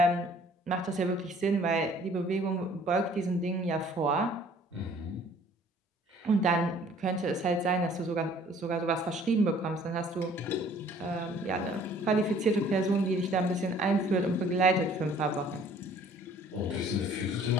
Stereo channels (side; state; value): both; normal; correlation 0.55